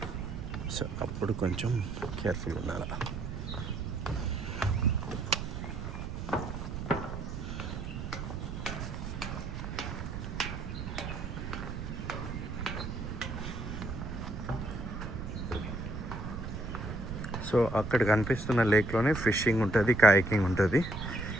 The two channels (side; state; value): right; noise; rumble, 6 dB below the sound